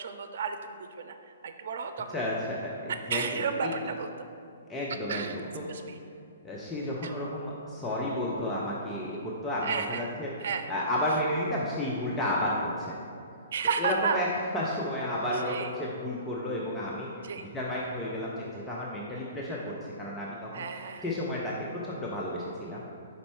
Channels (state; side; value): inverted; both; correlation -0.36